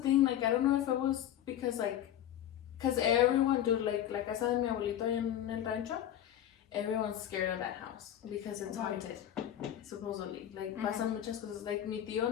Like, I don't know if it was because, like, because everyone, dude, like casa de mi abuelito en el rancho, everyone's scared of that house because it's haunted, supposedly. Like, pasan muchas cosas. Like, mi tío,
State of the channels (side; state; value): right; quieter; 11.1 dB